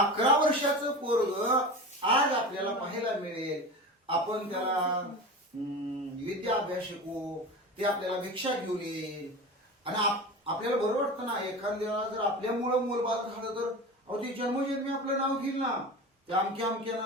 वर्षाचं पोरग आज आपल्याला पाहायला मिळेल. आपण त्याला विद्या अभ्यास शिकवू, ते आपल्याला भिक्षा घेऊन येईल, आणि आपल्याला बरं वाटतं ना. एखाद्याला जर आपल्यामुळं मूलबाळ झालं तर अहो ते जन्मजन्मी आपलं नाव घेईल ना, ते अमक्या अमक्यानं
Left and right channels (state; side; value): normal; both; correlation 0.30